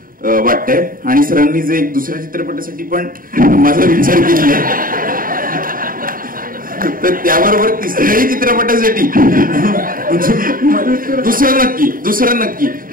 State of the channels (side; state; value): left; late; 0.41 ms